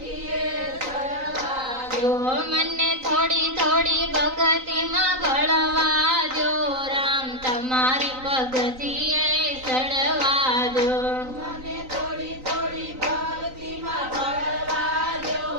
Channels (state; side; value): late; left; 3.9 ms